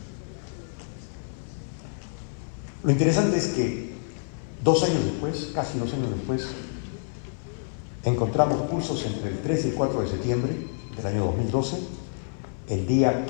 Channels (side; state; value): right; silent; 57 dB below the other